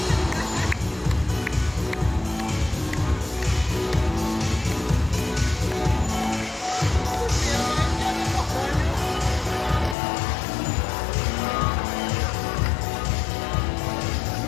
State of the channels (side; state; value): right; drops out; at 10.0 s